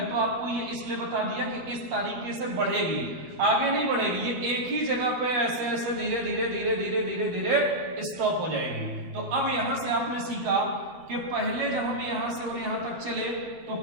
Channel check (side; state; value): left; late; 12 ms